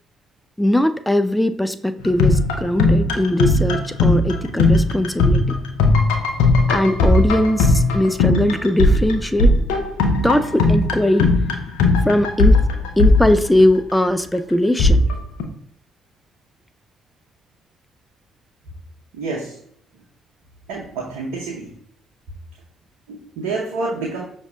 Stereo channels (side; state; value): both; normal; correlation 0.74